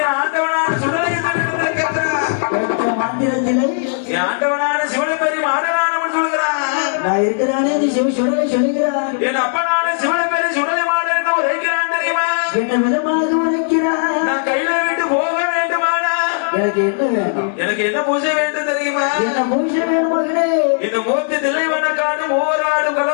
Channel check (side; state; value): right; silent; digital silence